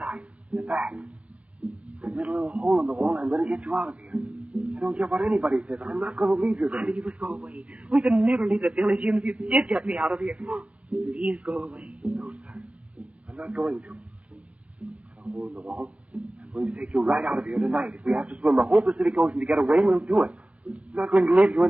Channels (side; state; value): left; late; 0.064 ms